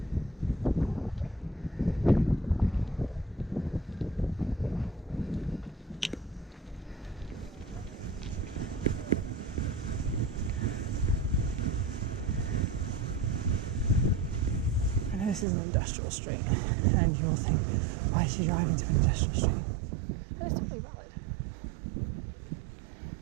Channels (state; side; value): drops out; left; at 15.5 s